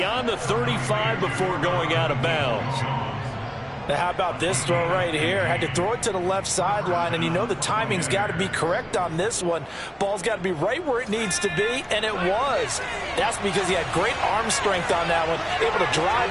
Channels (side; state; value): both; identical; correlation 1.00